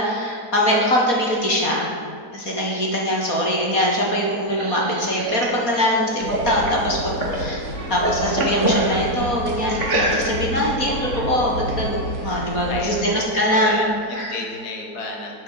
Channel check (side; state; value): right; late; 4.2 ms